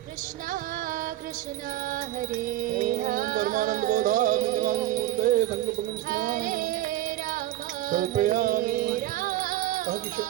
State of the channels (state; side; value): quieter; left; 14.1 dB